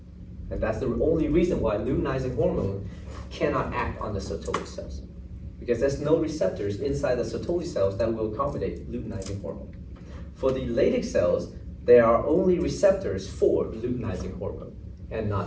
And that's the only reason why luteinizing hormone cannot act on the Sertoli cells, because there's no receptors inside the Sertoli cells that will accommodate luteinizing hormone. For the Leydig cells, there are only receptors for luteinizing hormone and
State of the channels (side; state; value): both; identical; correlation 1.00